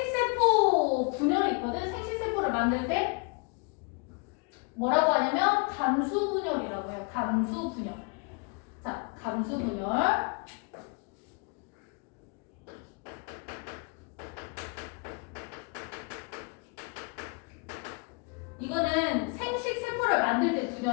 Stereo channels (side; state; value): right; quieter; 33.7 dB